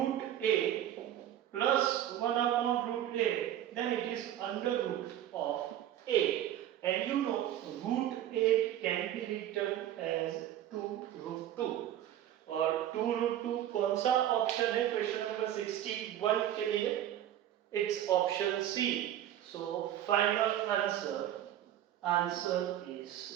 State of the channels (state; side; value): quieter; left; 11.8 dB